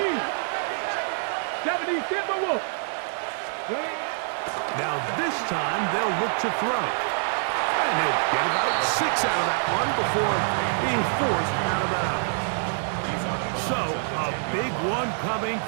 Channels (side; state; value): left; silent; digital silence